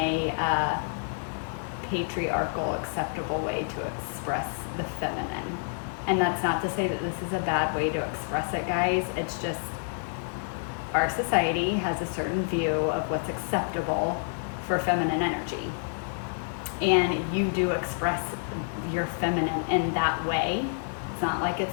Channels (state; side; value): silent; right; digital silence